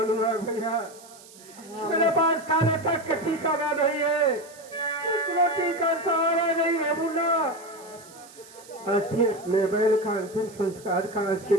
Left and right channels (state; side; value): noise; right; hiss, 21 dB below the sound